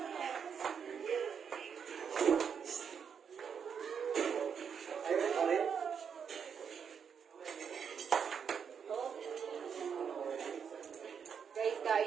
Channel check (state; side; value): quieter; left; 7.1 dB